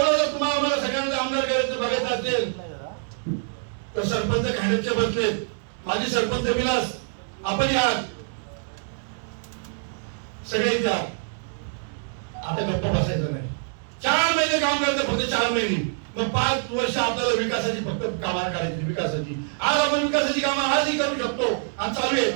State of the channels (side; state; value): left; silent; digital silence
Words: जर तुम्हाला आम्हाला सगळ्यांना आमदार करायचं बघायचं असेल तर सरपंच खांडेचे बसलेत, माझे सरपंच विलास, आपण या सगळे द्या. आता गप्पा बसायचं नाही. 4 महिने काम करायचं, फक्त 4 महिने. मग 5 वर्ष आपल्याला विकासाची फक्त कामं करायची, विकासाची. आज आपण विकासाची कामं आजही करू शकतो आणि चालू आहेत.